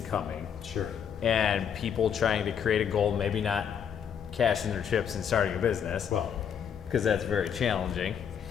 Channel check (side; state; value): right; quieter; 8.0 dB